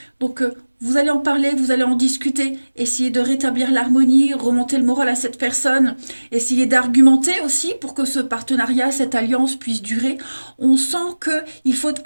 Donc, vous allez en parler, vous allez en discuter, essayer de rétablir l'harmonie, remonter le moral à cette personne, essayer d'argumenter aussi pour que ce partenariat, cette alliance puisse durer. On sent qu'il faut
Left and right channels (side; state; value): both; inverted; correlation -1.00